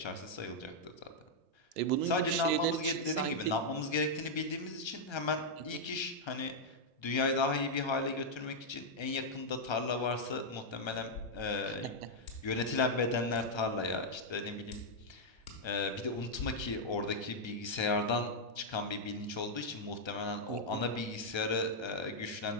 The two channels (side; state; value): right; late; 1.3 ms